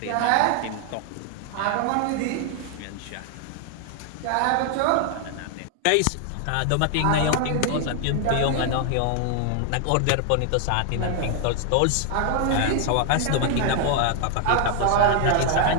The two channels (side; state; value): both; different; correlation 0.00